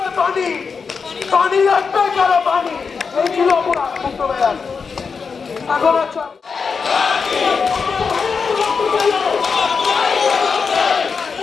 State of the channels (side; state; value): right; quieter; 5.4 dB